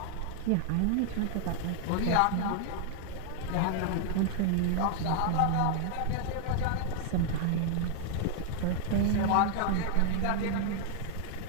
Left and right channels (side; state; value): both; different; correlation -0.01